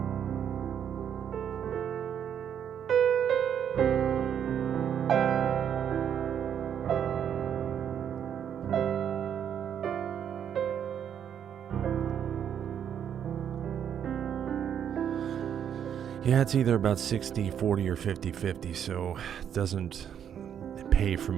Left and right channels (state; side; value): quieter; left; 8.8 dB